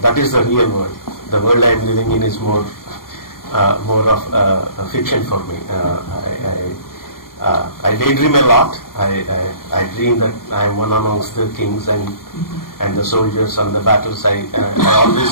is the real world. The world I am living in is more of a fiction for me. I daydream a lot. I dream that I am one amongst the kings and the soldiers on the battles. I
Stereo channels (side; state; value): right; late; 0.91 ms